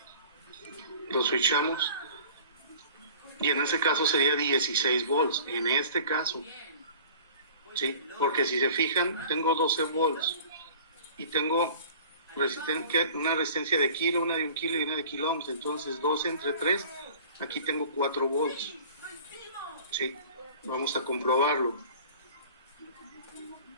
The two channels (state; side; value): inverted; both; correlation -0.45